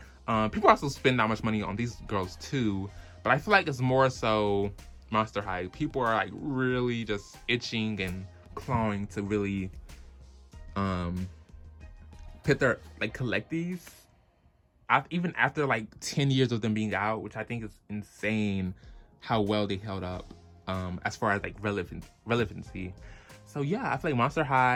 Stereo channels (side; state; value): both; identical; correlation 1.00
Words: People also spend that much money on these girls too, but I feel like it's more so Monster High. People are like really just itching and clawing to really collect these. Even after like 10 years of them being out, which I think is insane how well they held up as far as like relevancy. So yeah, I feel like Monster